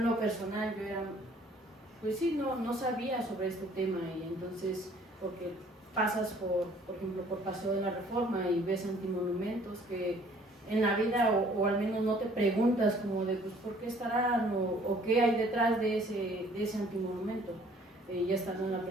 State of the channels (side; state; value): both; normal; correlation 0.57